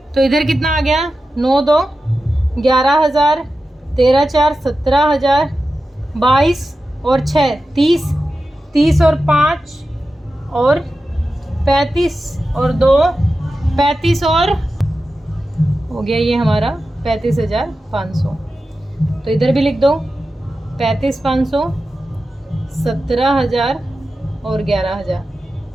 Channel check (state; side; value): normal; both; correlation 0.92